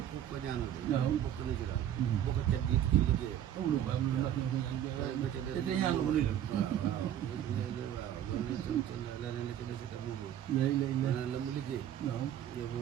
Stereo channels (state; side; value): quieter; left; 10.7 dB